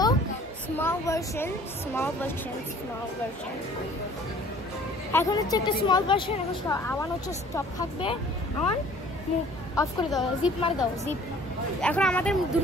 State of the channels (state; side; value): normal; both; correlation 0.52